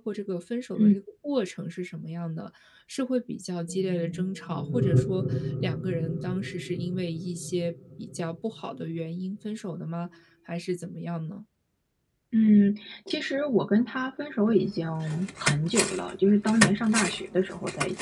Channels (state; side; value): identical; both; correlation 1.00